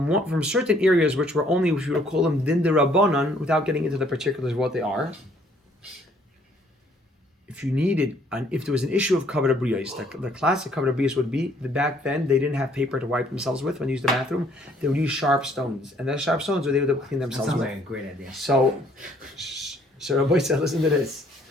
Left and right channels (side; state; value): both; normal; correlation 0.63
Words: certain areas which were only, if you would call them din de rabbanan, without getting into the particulars of what they are. If you needed, and if there was an issue of kavod abriyos, the classic kavod abriyos would be that back then they didn't have paper to wipe themselves with when they used the bathroom. They would use sharp stones, and those sharp stones were they would clean themselves Sounds with. like a great idea. So Rabbi said, listen to this.